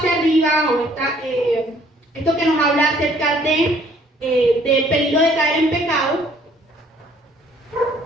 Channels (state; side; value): normal; both; correlation 0.60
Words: arriba, o esto que nos habla acerca del peligro de caer en pecado,